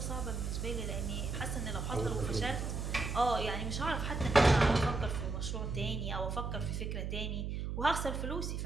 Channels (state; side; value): noise; right; hum, 3 dB below the sound